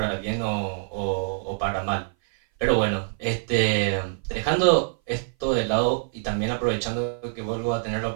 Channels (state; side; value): silent; left; 57 dB below the other